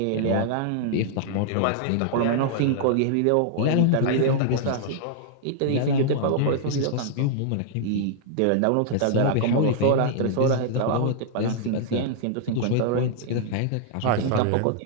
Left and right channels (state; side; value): different; both; correlation -0.01